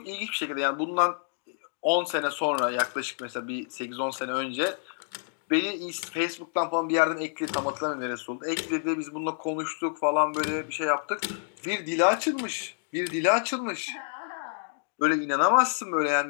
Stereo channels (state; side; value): silent; right; digital silence